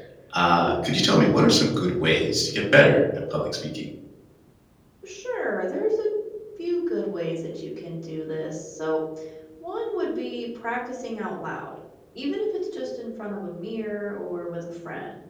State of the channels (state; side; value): identical; both; correlation 1.00